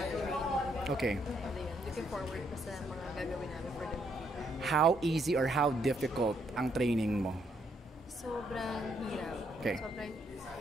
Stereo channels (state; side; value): normal; both; correlation 0.73